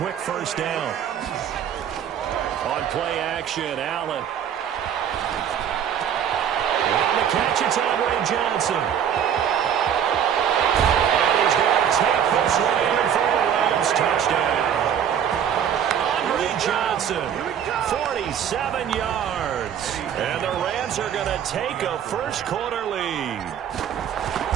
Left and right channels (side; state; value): left; quieter; 8.9 dB